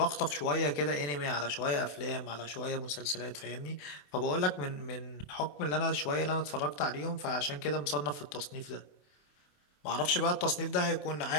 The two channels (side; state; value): right; late; 27 ms